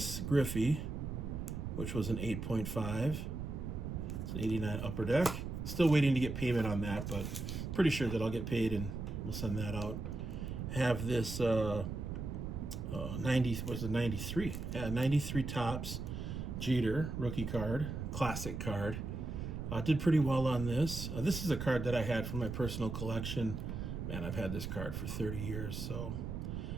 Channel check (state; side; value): noise; right; rumble, 5 dB below the sound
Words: Griffey, which was an 8.5. It's an 89 Upper Deck. Still waiting to get payment on that, but pretty sure that I'll get paid and we'll send that out. Have this 93? Yeah, 93 Topps Jeter rookie card, classic card. Did pretty well on this. This is a card that I had from my personal collection. Man, I've had this card for 30 years, so